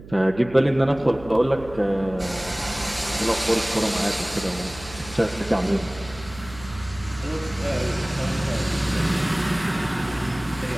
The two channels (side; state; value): right; noise; hum, 17 dB below the sound